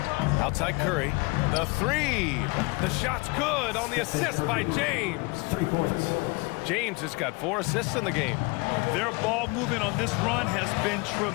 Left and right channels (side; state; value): right; quieter; 27.2 dB